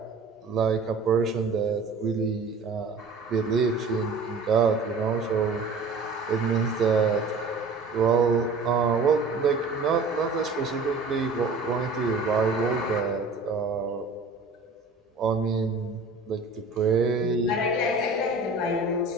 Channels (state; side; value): quieter; left; 3.6 dB